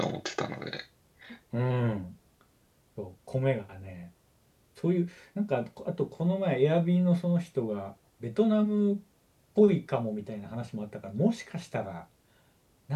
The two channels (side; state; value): both; identical; correlation 1.00